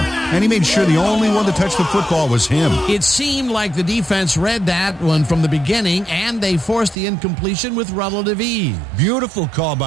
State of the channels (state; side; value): drops out; left; at 7.0 s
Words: and he made sure the only one to touch the football was him. It seemed like the defense read that one from the beginning, and they forced the incompletion with relative ease. Beautiful call